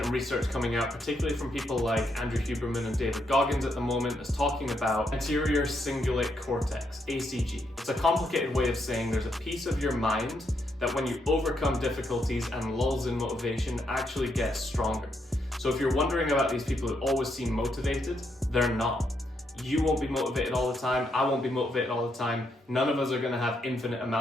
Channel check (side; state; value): both; normal; correlation 0.78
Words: and research coming out, particularly from people like Andrew Huberman and David Goggins at the moment, that's talking about anterior cingulate cortex, ACG. It's a complicated way of saying there's a piece of your mind that when you overcome difficulties and lulls in motivation actually gets stronger. So if you're wondering about these people who always seem motivated, they're not. You won't be motivated all the time, I won't be motivated all the time. None of us are gonna have infinite